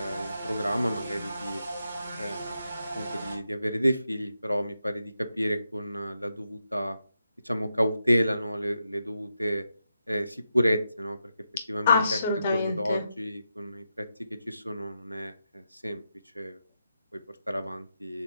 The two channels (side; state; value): both; inverted; correlation -0.86